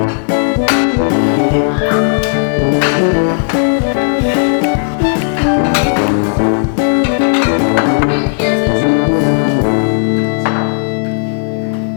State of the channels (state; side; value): silent; right; digital silence